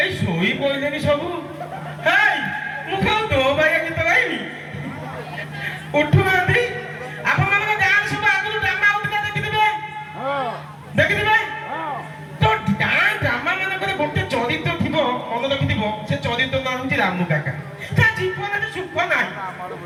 ଏଇ ଶୋଇ ପଇଲେନି ସବୁ। ହେଇ ମୁଁ କଣ ତୋ ଭାଇ ଗୀତ ଗାଇବି? ଉଠୁନାହାନ୍ତି। ଆପଣମାନଙ୍କ ଗାଁରେ ସବୁ ଆଗରୁ ଡ୍ରାମା ହଉଥିଲା ଦେଖିଥିବେ, ଦେଖିଥିବେ। ତ ଗାଁ ଡ୍ରାମା ମାନଙ୍କରେ ଗୋଟେ ଚରିତ୍ର ଥିବ, ମନେ ରଖିଥିବ, ସେ ଚରିତ୍ର ନାଁ ହଉଛି ରାମୁ କାକା। ତା ଜୀବନରେ ସୁଖ ନାହିଁ,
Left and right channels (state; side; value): identical; both; correlation 1.00